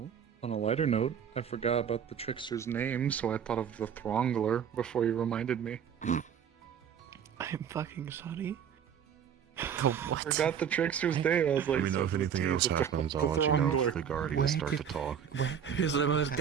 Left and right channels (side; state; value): left; quieter; 8.2 dB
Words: on a lighter note, I forgot about the trickster's name, so I thought of the Throngler before you reminded me. I'm fucking sorry. Forgot the trickster's name. I was like, Let me know if anything else happens. I'll let you know if the guardians start to talk. He's the most